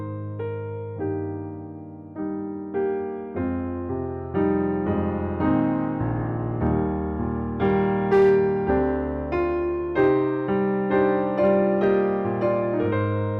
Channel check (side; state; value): both; identical; correlation 1.00